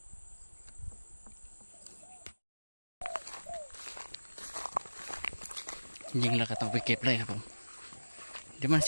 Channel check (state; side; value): inverted; both; correlation -1.00